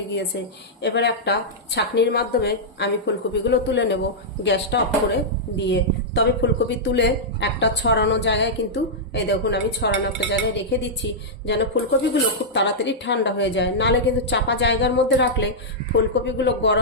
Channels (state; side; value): normal; both; correlation -0.09